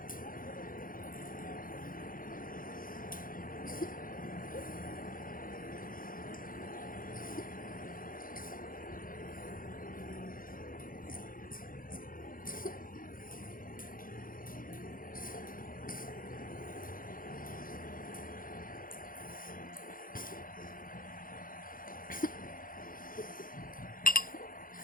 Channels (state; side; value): late; right; 0.40 ms